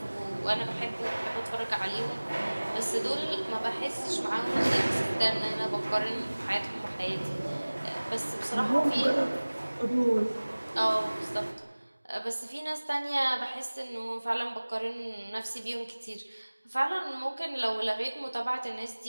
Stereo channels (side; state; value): both; inverted; correlation -1.00